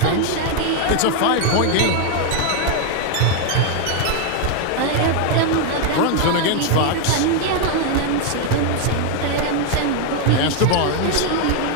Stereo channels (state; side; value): different; both; correlation 0.01